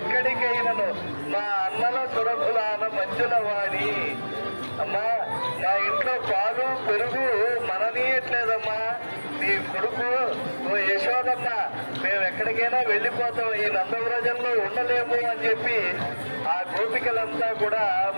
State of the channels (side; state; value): both; inverted; correlation -1.00